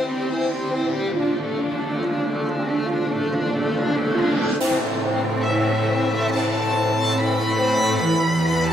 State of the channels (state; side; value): normal; both; correlation 0.77